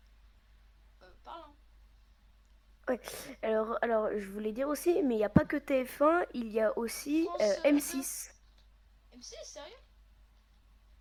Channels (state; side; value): identical; both; correlation 1.00